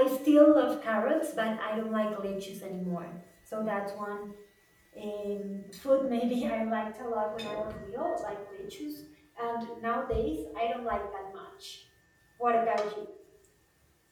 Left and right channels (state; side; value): identical; both; correlation 1.00